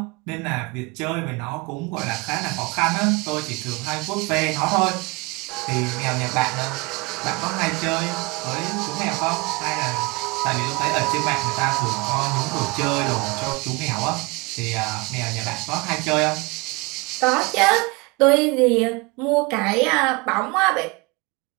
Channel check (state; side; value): quieter; left; 26.5 dB